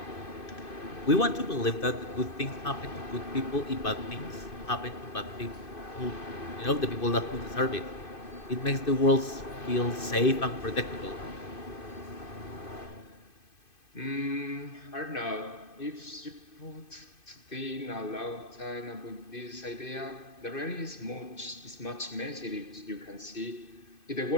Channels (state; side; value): late; right; 2.5 ms